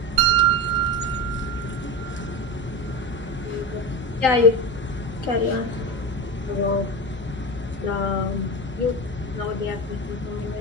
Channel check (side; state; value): both; normal; correlation 0.24